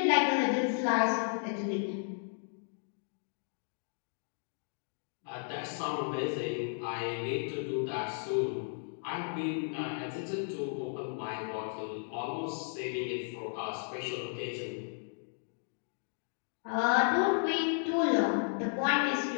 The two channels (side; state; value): right; silent; digital silence